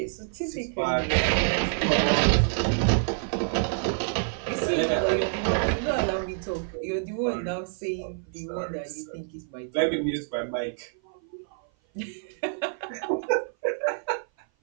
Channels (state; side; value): silent; left; 56 dB below the other